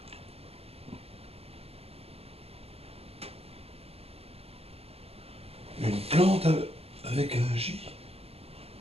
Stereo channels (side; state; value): left; late; 0.29 ms